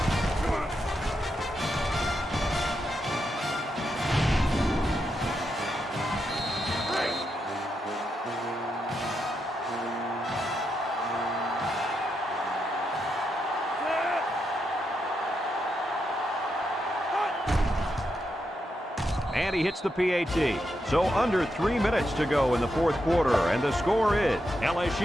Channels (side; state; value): both; normal; correlation 0.84